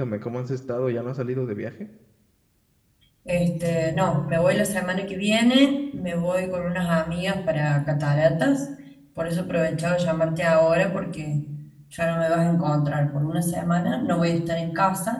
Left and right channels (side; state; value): both; identical; correlation 1.00